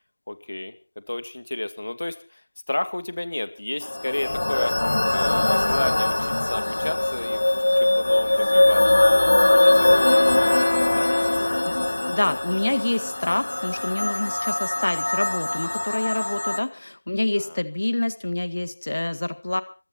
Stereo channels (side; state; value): both; inverted; correlation -1.00